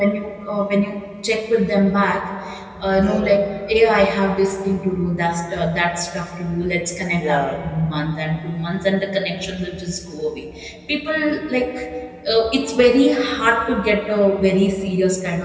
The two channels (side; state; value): both; identical; correlation 1.00